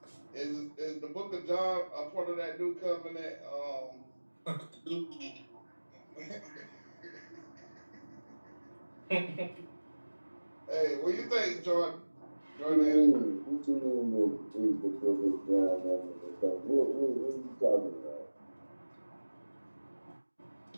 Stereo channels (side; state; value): both; inverted; correlation -1.00